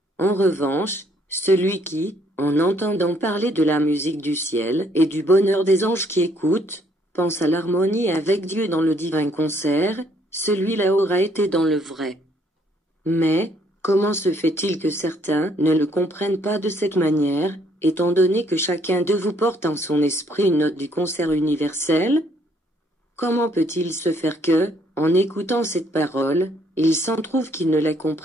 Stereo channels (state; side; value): normal; both; correlation 0.66